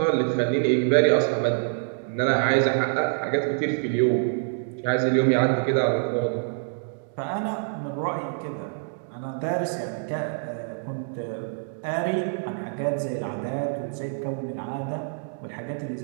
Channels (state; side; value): silent; left; digital silence